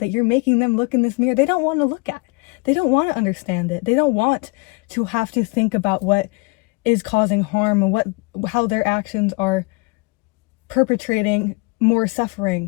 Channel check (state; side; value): quieter; right; 27.9 dB